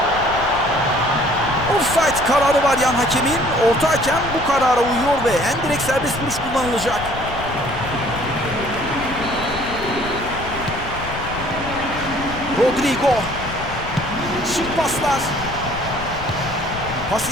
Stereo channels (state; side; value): noise; left; rumble, 10 dB below the sound